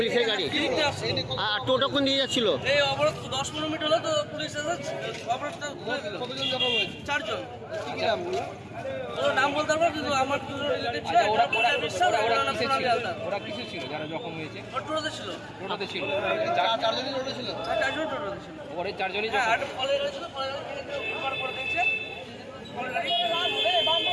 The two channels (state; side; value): identical; both; correlation 1.00